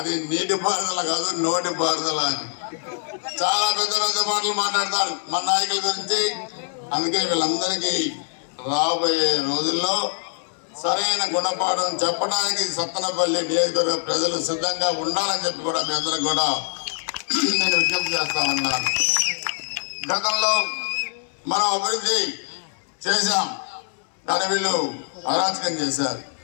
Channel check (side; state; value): right; silent; 63 dB below the other